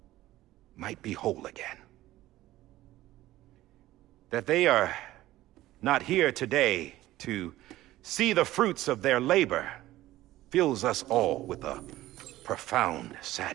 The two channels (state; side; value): quieter; left; 15.8 dB